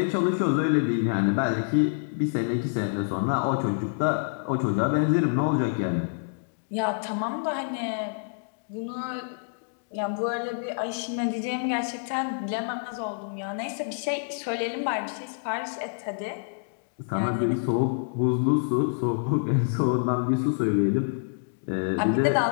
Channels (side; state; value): right; silent; digital silence